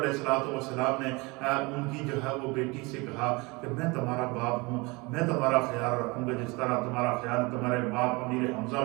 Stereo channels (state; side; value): quieter; left; 26.0 dB